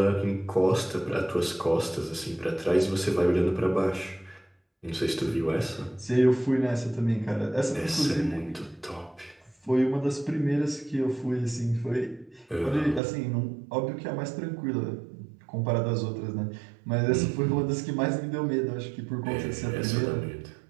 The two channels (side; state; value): left; drops out; at 13.0 s